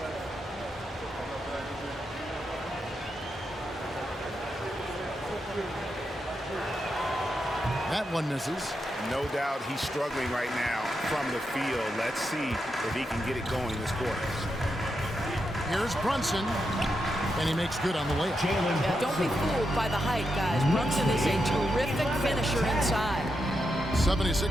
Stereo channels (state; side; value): normal; both; correlation 0.85